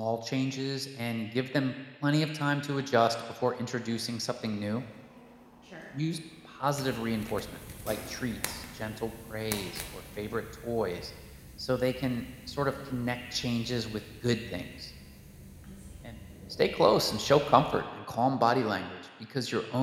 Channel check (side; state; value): both; identical; correlation 1.00